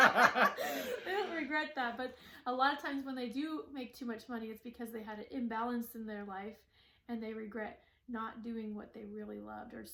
don't regret that, but a lot of times when they do make too much money, it's because they had an imbalance in their life and they regret not doing what they really loved or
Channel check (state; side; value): identical; both; correlation 1.00